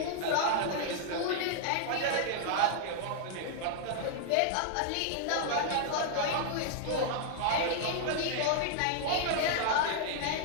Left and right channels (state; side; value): different; both; correlation -0.01